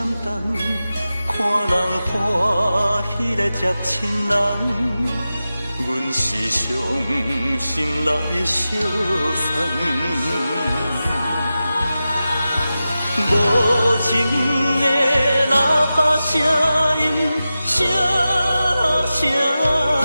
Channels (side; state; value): both; inverted; correlation -0.93